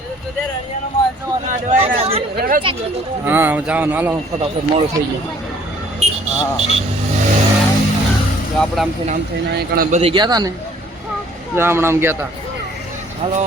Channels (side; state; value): both; normal; correlation 0.58